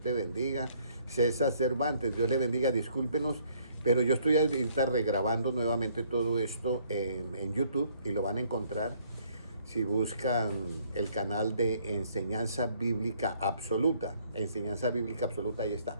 bendiga. César Cervantes, Dios le bendiga. Discúlpenos, pero yo estoy ahorita regrabando nuevamente todo esto en YouTube y lo van a encontrar si buscan el canal de Enseñanza Bíblica Absoluta. Enseñanza Bíblica Absoluta, ahí está.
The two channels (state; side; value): inverted; both; correlation -0.64